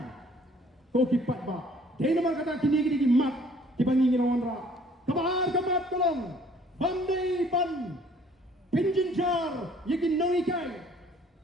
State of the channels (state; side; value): normal; both; correlation 0.57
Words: ko ki patba dei nama kata kini ki mat ki bangi ngirawan ra kabar kamat tolong bandai ban pinjinjar yegi nongi kai